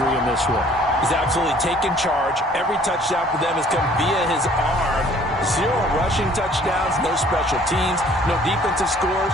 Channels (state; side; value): normal; both; correlation 0.56